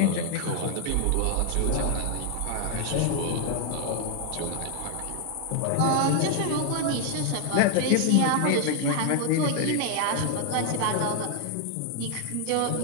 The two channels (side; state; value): both; different; correlation 0.00